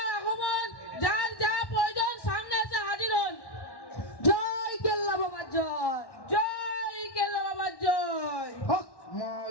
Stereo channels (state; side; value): late; right; 1.1 ms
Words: আগমন, যার যা প্রয়োজন সামনে এসে হাজির হন। জয় কেল্লা বাবার জয়। জয় কেল্লা বাবার জয়। হক